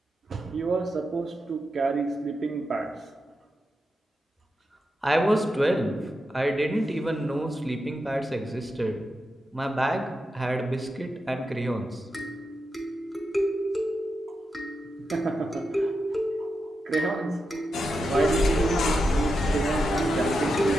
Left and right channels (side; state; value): both; normal; correlation 0.88